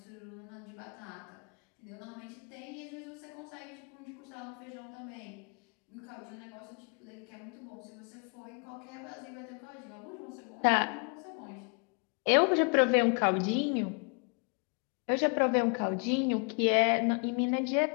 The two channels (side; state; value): right; quieter; 36.4 dB